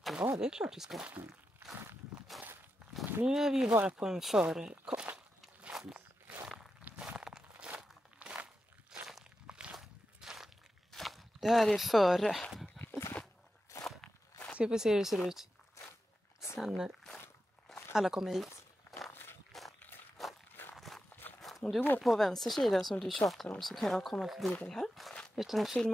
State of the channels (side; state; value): both; normal; correlation 0.89